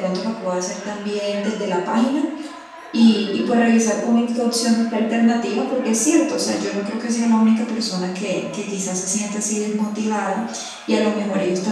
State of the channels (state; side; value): identical; both; correlation 1.00